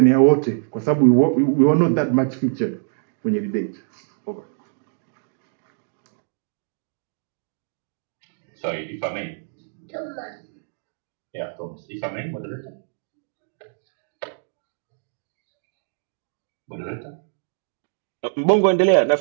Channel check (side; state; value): left; silent; digital silence